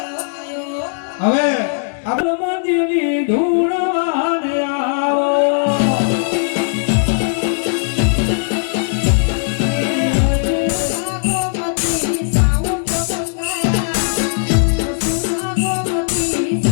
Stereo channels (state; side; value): silent; right; digital silence